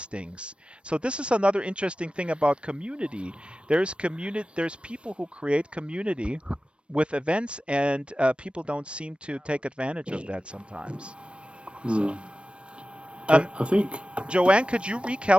So this is another interesting thing about community. There's people who create community with events, and people don't seem to take advantage of that sometimes. So. I think. Joanne, could you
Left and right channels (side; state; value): left; late; 0.059 ms